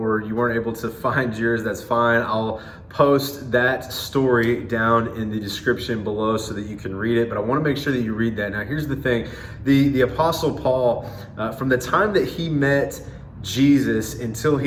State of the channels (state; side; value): identical; both; correlation 1.00